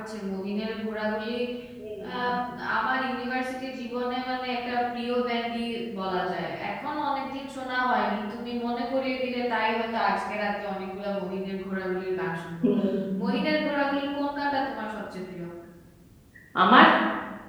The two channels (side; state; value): both; identical; correlation 1.00